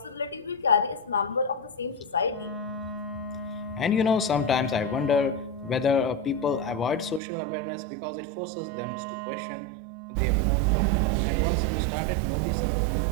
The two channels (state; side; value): drops out; left; at 7.2 s